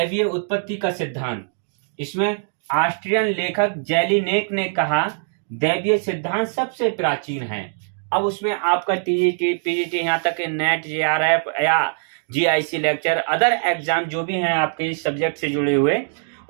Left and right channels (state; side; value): silent; left; digital silence